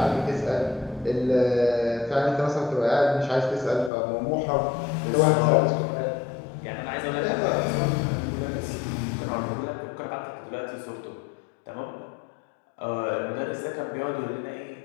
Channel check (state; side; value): drops out; right; at 3.9 s